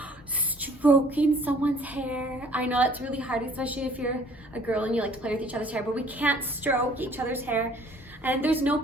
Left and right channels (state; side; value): normal; both; correlation 0.57